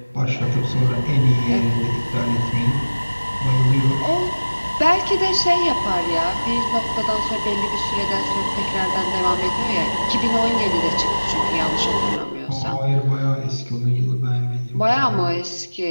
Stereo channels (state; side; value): inverted; both; correlation -1.00